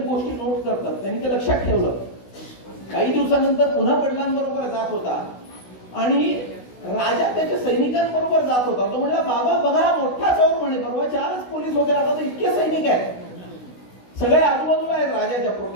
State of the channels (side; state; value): right; late; 16 ms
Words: गोष्टी नोट करतात, त्यांनी ते लक्षात ठेवलं. काही दिवसानंतर पुन्हा वडिलांबरोबर जात होता आणि राजा त्याच्या सैनिकांबरोबर जात होता. तो म्हणला बाबा बघा मोठा चोर म्हणे, परवा 4च पोलीस होते, आता तर इतके सैनिक आहेत, सगळे आजूबाजूला आहेत राजाच्या